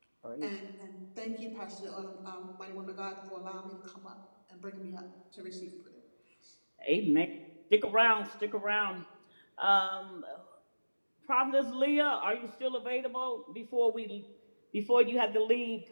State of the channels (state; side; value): inverted; both; correlation -1.00